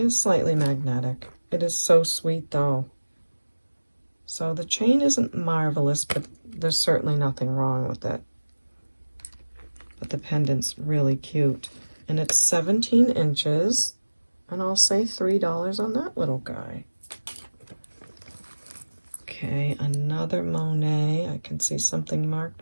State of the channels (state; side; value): inverted; both; correlation -1.00